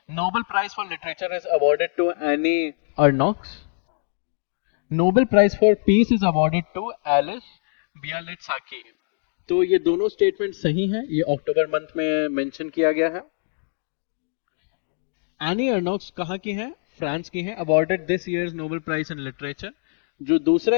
Nobel Prize for Literature is awarded to Annie Arnox? Nobel Prize for Peace is awarded to Alice Bialyatski। तो ये दोनों स्टेटमेंट सही हैं, ये अक्टूबर मंथ में मेंशन किया गया है। एनी अर्नॉक्स कहाँ की है? फ्रांस की है। Awarded this year's Nobel prize in literature. जो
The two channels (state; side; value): silent; right; digital silence